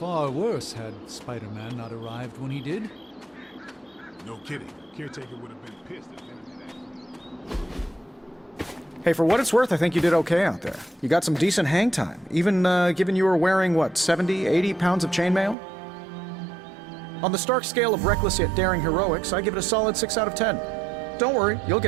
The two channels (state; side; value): drops out; left; at 15.6 s